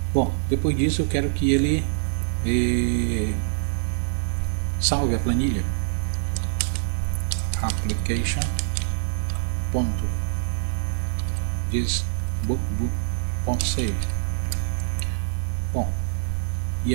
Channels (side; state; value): left; silent; 56 dB below the other